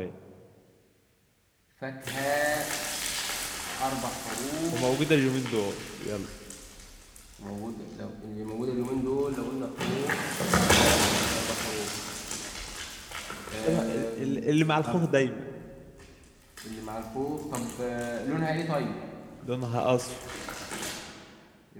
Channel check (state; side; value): identical; both; correlation 1.00